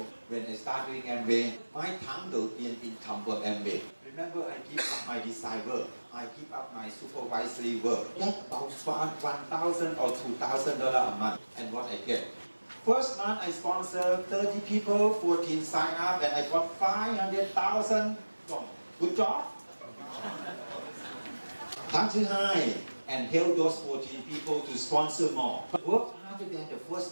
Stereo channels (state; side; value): inverted; both; correlation -1.00